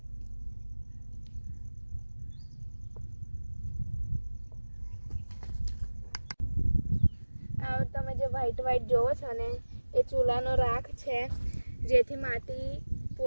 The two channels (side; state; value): both; inverted; correlation -1.00